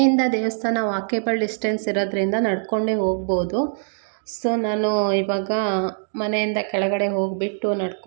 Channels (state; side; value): silent; left; digital silence